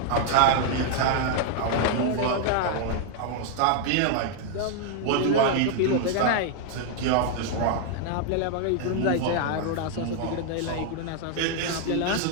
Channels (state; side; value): different; both; correlation 0.00